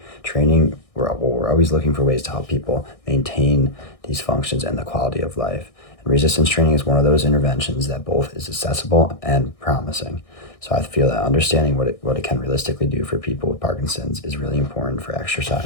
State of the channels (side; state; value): right; late; 1.6 ms